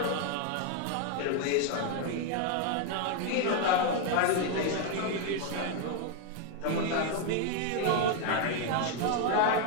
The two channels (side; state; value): both; different; correlation 0.01